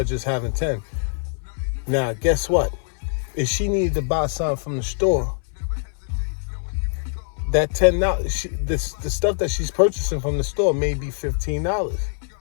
just having 10. Now, guess what? If she needed to buy something from the store, that $10, the stuff that she's purchasing from the store may be $15.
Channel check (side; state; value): right; silent; 63 dB below the other